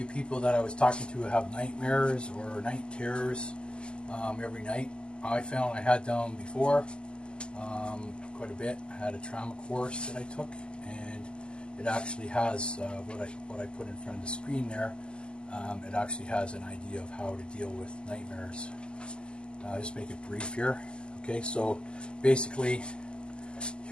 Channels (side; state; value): right; late; 0.049 ms